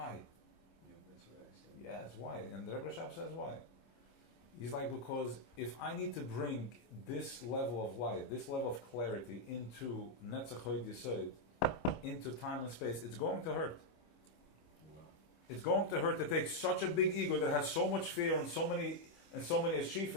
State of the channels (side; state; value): right; late; 26 ms